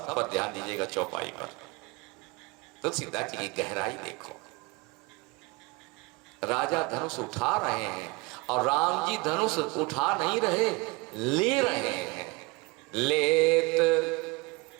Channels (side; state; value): left; quieter; 25.5 dB